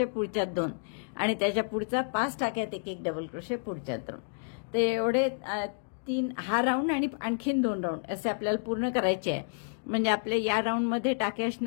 पुढच्यात 2, आणि त्याच्या पुढचा 5 टाक्यात 1 डबल क्रोशे, पुढच्यात 2. तर एवढे 3 हा राऊंड आणि आणखीन 2 राऊंड असे आपल्याला पूर्ण करायचे आहे. म्हणजे आपल्या या राऊंडमध्ये टाके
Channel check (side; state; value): right; silent; digital silence